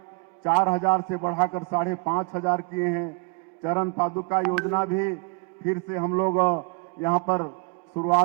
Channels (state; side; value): quieter; left; 34.9 dB